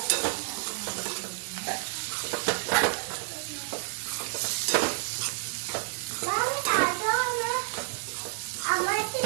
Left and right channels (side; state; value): left; silent; digital silence